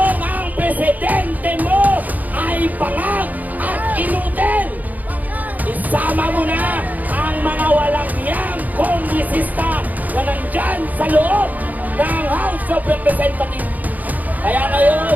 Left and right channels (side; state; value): left; late; 0.080 ms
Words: ang presidente mo ay bangag at inutil. Isama mo na ang mga walang hiyang kongresista na nandyan sa loob ng House of Representatives. Kaya ngayon,